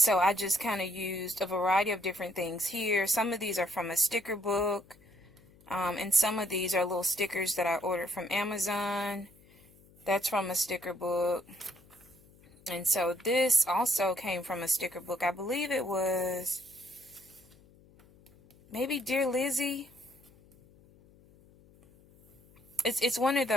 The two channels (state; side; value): noise; left; hum, 27 dB below the sound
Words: I just kind of used a variety of different things here. Some of these are from a sticker book. And some of these are little stickers that I ordered from Amazon. That's from a sticker book. And so this also came from a sticker book. I believe it was maybe Dear Lizzie. It's one of